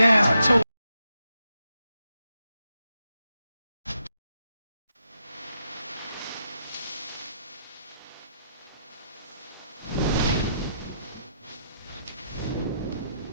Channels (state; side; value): inverted; both; correlation -0.79